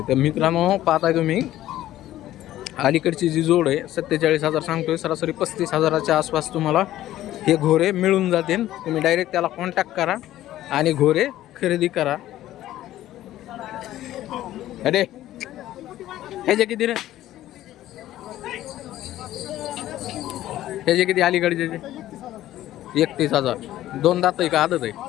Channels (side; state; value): right; quieter; 13.9 dB